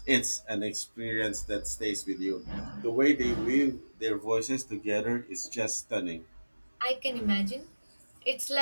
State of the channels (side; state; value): both; inverted; correlation -1.00